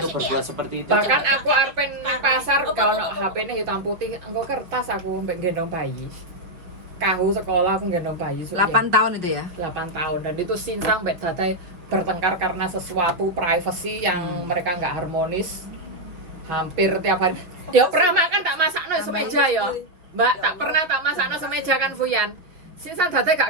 untuk berbuat seperti itu. Bahkan aku arpen pasar kalau HP-nya hitam putih, engko kertas aku mbek gendong bayi. Kahu sekolah aku gendong bayi 8 tahun itu ya? 8 tahun, dan itu sincang mbek dadai bertengkar karena sesuatu privacy yang mereka nggak harmonis hampir tiap hari. Ya pernah makan tak masakno semeja ya Mbak, tak pernah tak masakno semeja kan Fuyan. Sisan dadai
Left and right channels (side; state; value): left; late; 5.5 ms